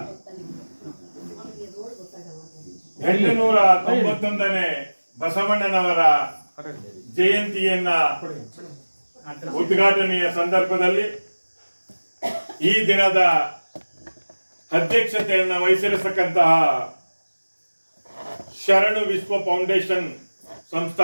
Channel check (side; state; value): both; inverted; correlation -1.00